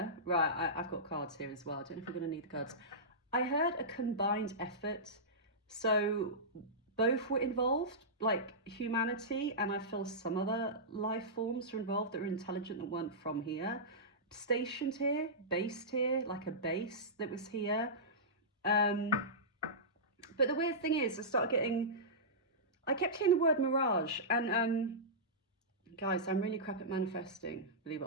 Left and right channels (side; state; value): both; normal; correlation -0.16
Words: right, I've got cards here as well. I don't know if we're going to need the cards. I heard a combined effort. So both were involved, like humanity, and I feel some other life forms were involved that were intelligent that weren't from here. Stationed here, based here, like a base that was here. But the weird thing is, I kept hearing the word mirage, and guys, I'm really crap at manifesting, believe it